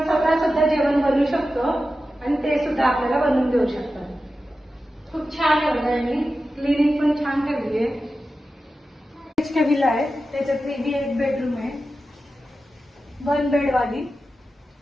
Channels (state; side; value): normal; both; correlation 0.92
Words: स्वतः सुद्धा जेवण बनवू शकतो आणि ते सुद्धा आपल्याला बनवून देऊ शकतात. खूप छान आहे. यांनी क्लिनिक पण छान ठेवली आहे. एचके विला आहे, त्याच्यात एक बेडरूम आहे, 1 बेड वाली.